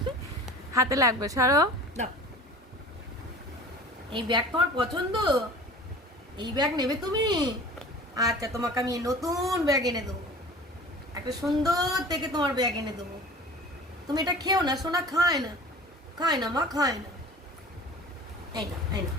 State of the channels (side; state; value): both; normal; correlation 0.41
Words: হাতে লাগবে। সরো। দাও। এই ব্যাগ তোমার পছন্দ? এই ব্যাগ নেবে তুমি? আচ্ছা, তোমাকে আমি নতুন ব্যাগ এনে দেবো। একটা সুন্দর থেকে তোমার ব্যাগ এনে দেবো। তুমি এটা খেও না সোনা, খায় না, খায় না মা, খায় না। এই না, এই না,